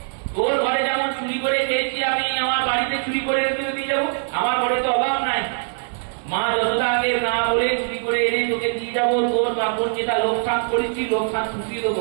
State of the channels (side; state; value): left; silent; 64 dB below the other